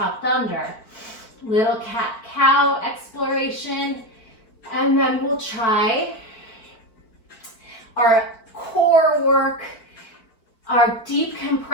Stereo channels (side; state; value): right; late; 4.5 ms